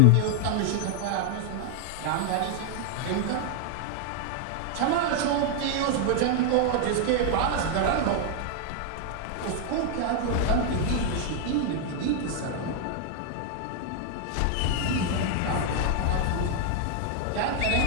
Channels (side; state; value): both; different; correlation 0.00